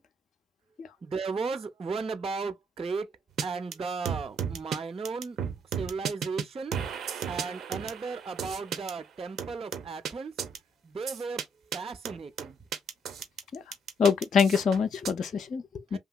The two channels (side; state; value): both; normal; correlation 0.71